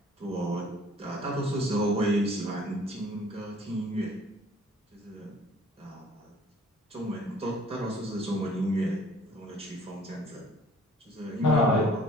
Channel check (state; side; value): normal; both; correlation 0.54